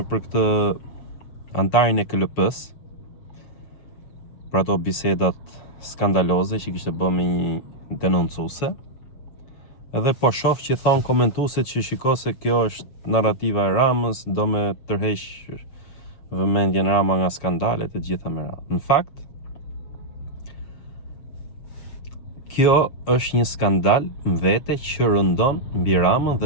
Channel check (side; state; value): right; late; 7.1 ms